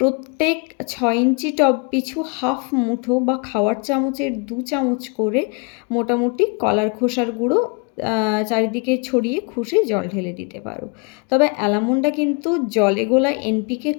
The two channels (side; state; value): right; quieter; 32.1 dB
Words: 6 ইঞ্চি টব পিছু হাফ মুঠো বা খাওয়ার চামচের 2 চামচ করে মোটামুটি কলার খোসার গুঁড়ো চারিদিকে ছড়িয়ে খুশে জল ঢেলে দিতে পারো। তবে অ্যালামন্ডা কিন্তু জলে গোলা এনপিকে